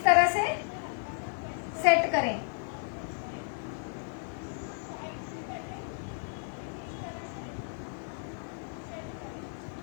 तरह से सेट करें।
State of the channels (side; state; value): right; silent; 56 dB below the other